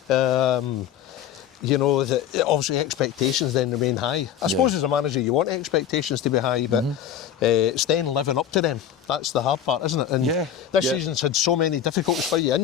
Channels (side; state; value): right; quieter; 9.6 dB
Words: You know, obviously expectations then remain high. I suppose as a manager you want expectations to be high, but it's then living up to them. That's the hard part, isn't it? And this season's had so many difficulties for you.